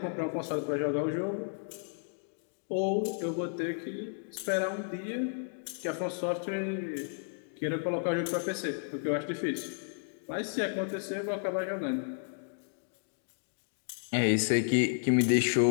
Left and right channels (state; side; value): silent; right; digital silence